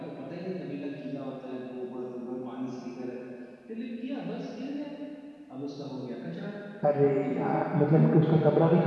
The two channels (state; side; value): identical; both; correlation 1.00